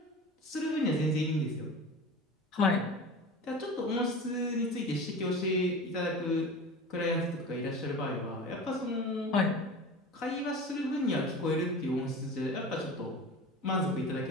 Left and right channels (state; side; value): normal; both; correlation 0.34